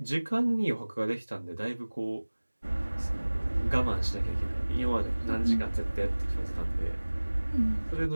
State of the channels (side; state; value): both; inverted; correlation -1.00